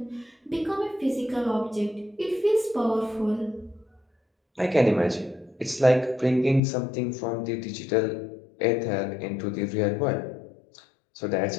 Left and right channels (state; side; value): drops out; right; at 6.6 s